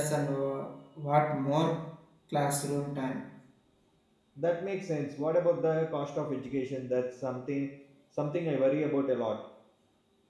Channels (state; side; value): identical; both; correlation 1.00